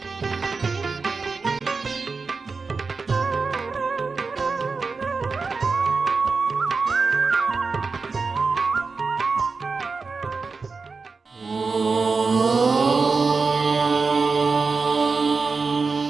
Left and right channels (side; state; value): left; quieter; 4.5 dB